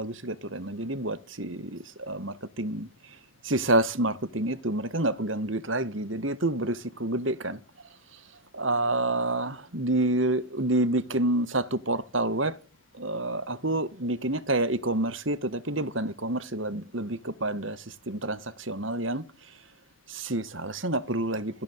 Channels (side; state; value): both; normal; correlation -0.03